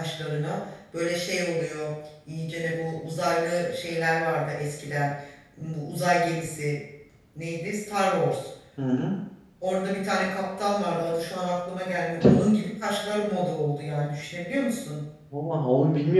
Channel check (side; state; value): both; identical; correlation 1.00